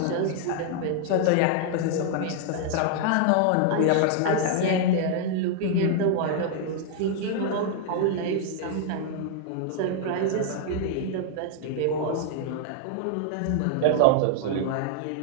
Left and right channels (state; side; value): different; both; correlation 0.00